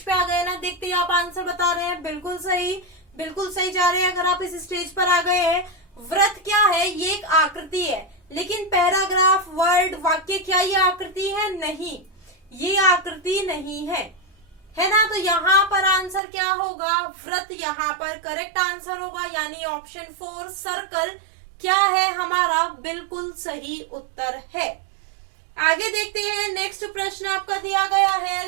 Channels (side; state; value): left; drops out; at 16.2 s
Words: पे आ गए ना, देखते ही आप आंसर बता रहे हैं। बिल्कुल सही, बिल्कुल सही जा रहे हैं। अगर आप इस स्टेज पर आ गए हैं, व्रत क्या है? ये एक आकृति है, लेकिन पैराग्राफ, वर्ड, वाक्य, क्या ये आकृति है? नहीं, ये आकृति नहीं है ना? तो यहाँ पर आंसर क्या होगा? व्रत यहाँ पर करेक्ट आंसर होगा, यानी ऑप्शन 4 सर्कल क्या है हमारा? बिल्कुल सही उत्तर है। आगे देखते हैं, नेक्स्ट प्रश्न आपका दिया गया है,